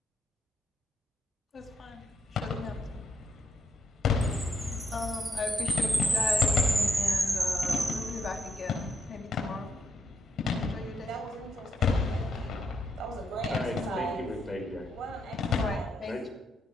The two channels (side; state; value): both; normal; correlation 0.78